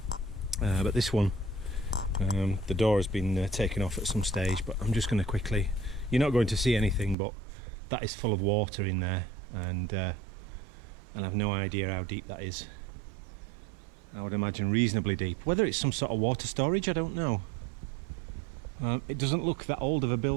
but this one, the door has been taken off at some stage. But I'm just going to quickly, you're not going to see anything, but that is full of water in there, and I've no idea how deep that is. I would imagine reasonably deep. Whether it's some sort of water storage, I don't know. It doesn't look that old of a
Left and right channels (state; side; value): drops out; left; at 7.2 s